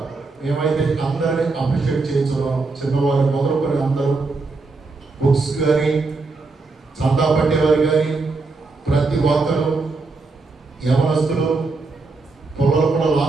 మేమైతే అందరినీ అప్రిషియేట్ చేయించున్నాం. చిన్నవారు మొదలుకొని అందరూ బుక్స్ కానీ, చందా పట్టేవారు కానీ, ప్రతి ఒక్కరు యవనస్తులు పొలాలు కూడా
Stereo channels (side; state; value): left; quieter; 3.8 dB